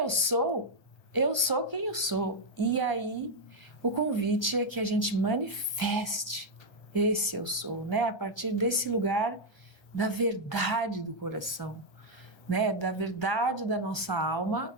sou quem eu sou. E aí, o convite é que a gente manifeste esse eu sou, né? A partir desse lugar da verdade do coração, né? Da verdade da nossa alma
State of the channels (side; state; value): right; late; 1.3 ms